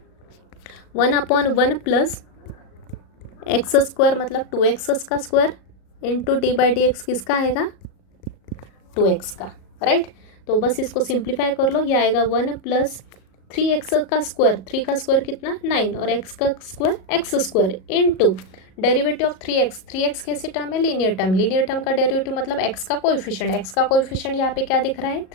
1/1 प्लस x² मतलब 2x का स्क्वायर इंटू d/dx किसका आएगा 2x का, राइट। तो बस इसको सिंप्लीफाई कर लो, ये आएगा 1 प्लस 3x का स्क्वायर, 3 का स्क्वायर कितना 9 और x का square x² into derivative of 3x कैसी टर्म है, लीनियर टर्म का डेरिवेटिव मतलब x का कोएफिशिएंट यहाँ पे क्या दिख रहा है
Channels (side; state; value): right; late; 37 ms